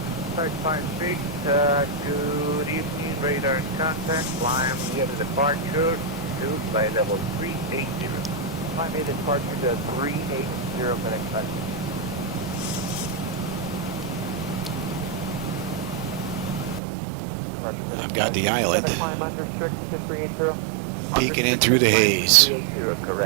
556, good evening, radar contact, climb near the departure, to by level 380. Climb a departure to 380 for expect. I've got the island Climb unrestricted to 380. peeking in through the haze. 380,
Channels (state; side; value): drops out; left; at 16.8 s